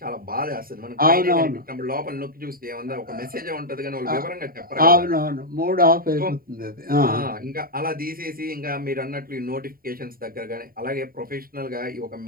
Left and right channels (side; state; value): left; late; 0.43 ms